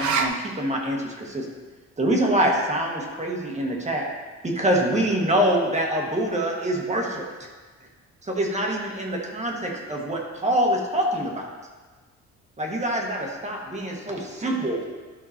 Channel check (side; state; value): both; normal; correlation 0.25